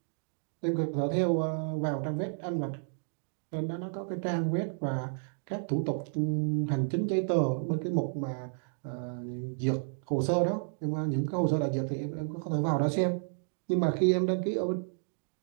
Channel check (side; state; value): left; silent; digital silence